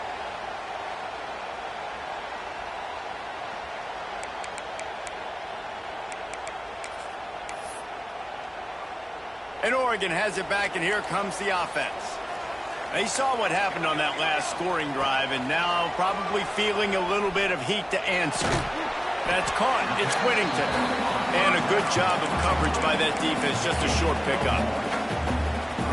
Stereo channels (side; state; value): both; identical; correlation 1.00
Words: And Oregon has it back, and here comes the offense. They saw what happened on that last scoring drive, and now probably feeling a little bit of heat to answer. That's caught. It's Whittington. And a good job of coverage by that defense. Just a short pickup.